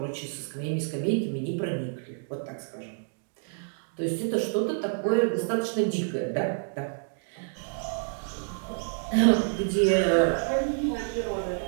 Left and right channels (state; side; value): silent; left; digital silence